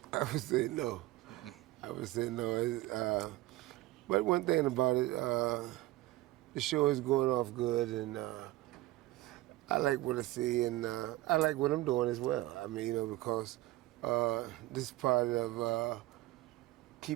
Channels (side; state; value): left; quieter; 17.4 dB